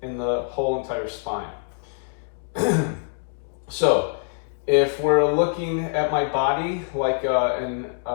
in the whole entire spine. So if we're looking at my body like in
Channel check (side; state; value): right; silent; digital silence